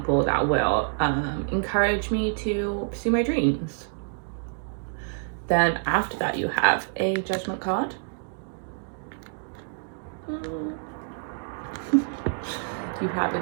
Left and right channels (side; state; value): left; silent; digital silence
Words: that will encourage me to pursue my dreams. Then after that, you have a Judgment card. You have a